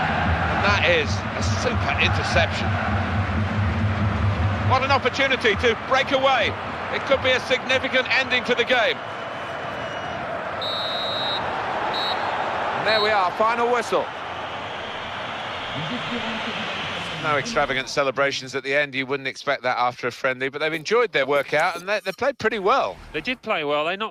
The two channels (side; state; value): both; identical; correlation 1.00